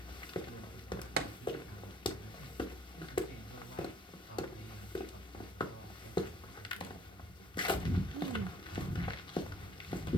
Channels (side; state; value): both; normal; correlation 0.59